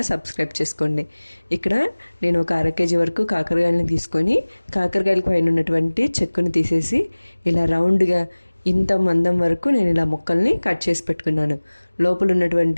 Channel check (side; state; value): both; inverted; correlation -1.00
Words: సబ్స్క్రైబ్ చేసుకోండి. ఇక్కడ నేను ఒక 1/2 kg వరకు కాకరకాయలని తీసుకొని కాకరకాయల పైన ఉన్నటువంటి చెక్కుని తీసేసి ఇలా రౌండ్గా ఇంత మందం వరకు నేను ఇలా ముక్కల్ని కట్ చేసి పెట్టుకున్నాను. లోపల